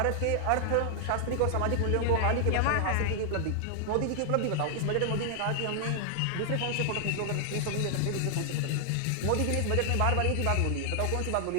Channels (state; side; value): different; both; correlation 0.00